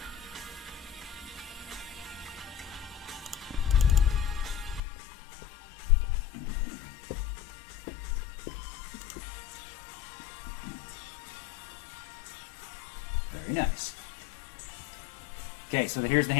Very nice. Okay, so here's the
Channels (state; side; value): drops out; right; at 4.8 s